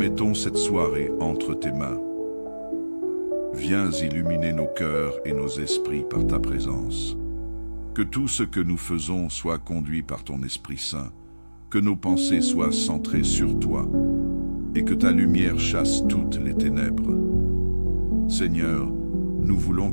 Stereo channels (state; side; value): inverted; both; correlation -1.00